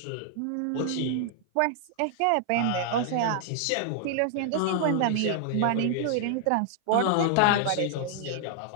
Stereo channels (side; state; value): both; different; correlation -0.01